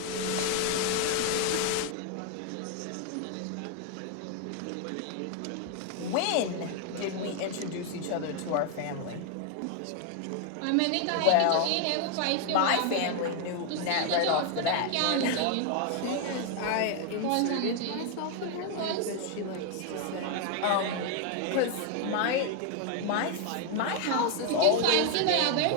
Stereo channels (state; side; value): different; both; correlation 0.01